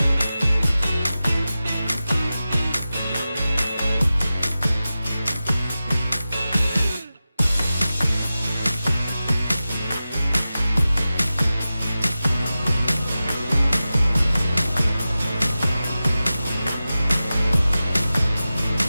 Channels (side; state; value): both; inverted; correlation -0.94